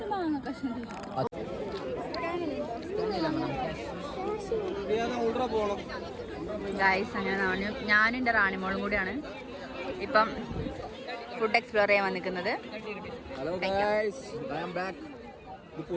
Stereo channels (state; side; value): identical; both; correlation 1.00